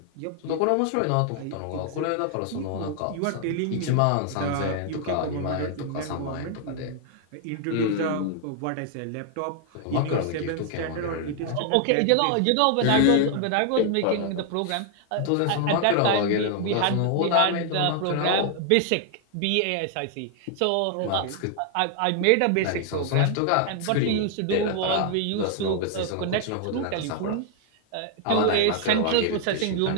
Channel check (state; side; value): different; both; correlation 0.00